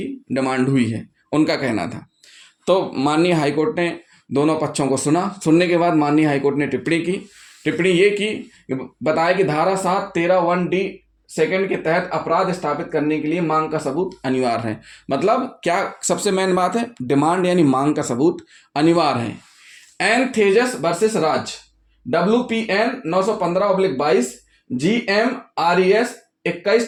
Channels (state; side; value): identical; both; correlation 1.00